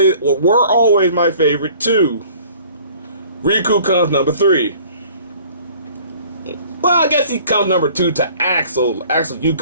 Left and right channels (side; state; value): both; inverted; correlation -0.51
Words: my favorite too. Riku comes number 3. Well, I guess he comes number 2 to Axel. Axel, you